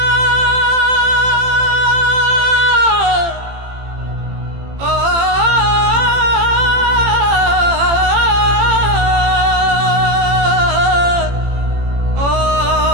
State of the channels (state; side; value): late; left; 18 ms